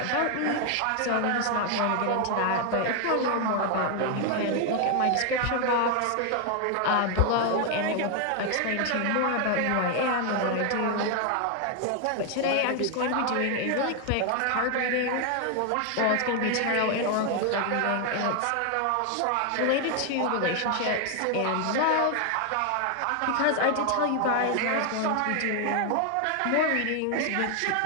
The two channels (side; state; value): both; different; correlation 0.01